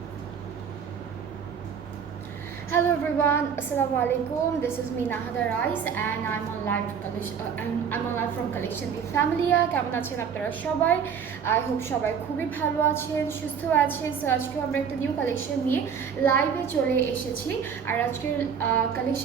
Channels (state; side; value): quieter; left; 7.1 dB